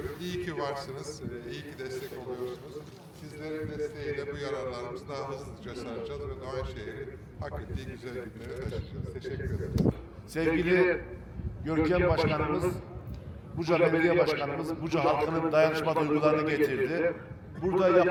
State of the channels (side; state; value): both; identical; correlation 1.00